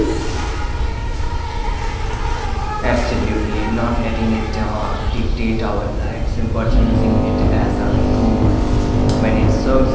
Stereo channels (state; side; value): identical; both; correlation 1.00